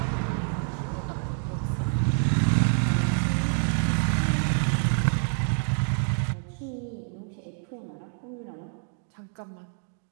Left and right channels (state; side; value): silent; left; 57 dB below the other